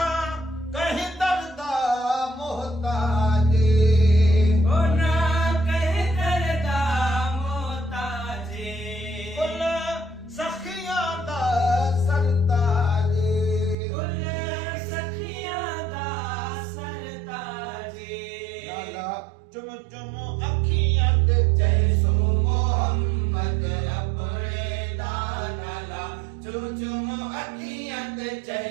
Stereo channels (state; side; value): drops out; left; at 13.8 s